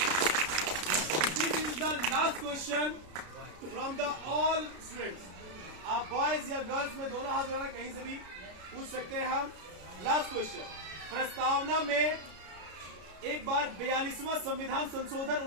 this is the last question from the all students. आप बॉयज या गर्ल्स में दोनों हाथ उठाना, कहीं से भी पूछ सकते हैं हम। लास्ट क्वेश्चन, प्रस्तावना में एक बार 42वां संविधान संशोधन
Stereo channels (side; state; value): left; late; 33 ms